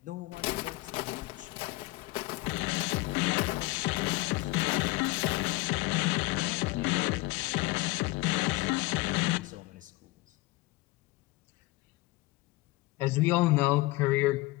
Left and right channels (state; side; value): quieter; right; 20.8 dB